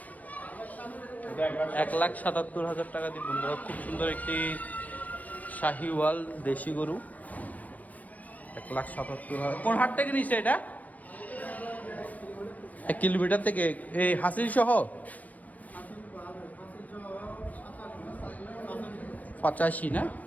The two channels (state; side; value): late; right; 0.077 ms